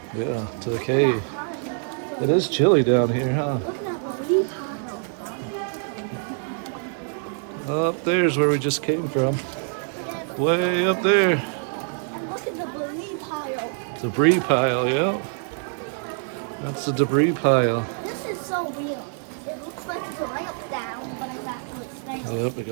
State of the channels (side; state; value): left; silent; 56 dB below the other